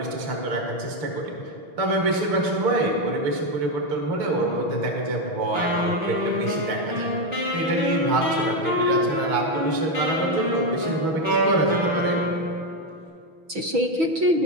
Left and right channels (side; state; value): left; late; 6.2 ms